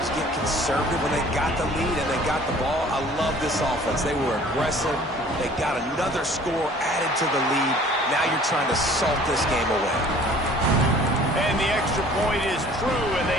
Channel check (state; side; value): normal; both; correlation 0.51